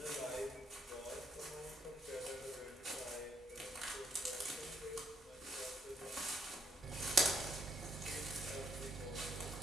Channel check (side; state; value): both; normal; correlation 0.72